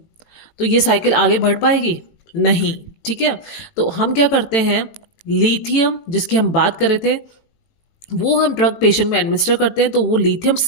तो ये साइकिल आगे बढ़ पाएगी, नहीं, ठीक है। तो हम क्या करते हैं, लिथियम जिसकी हम बात कर रहे थे वो हम ड्रग पेशेंट में एडमिनिस्टर करते हैं, तो वो लिथियम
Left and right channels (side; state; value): right; late; 18 ms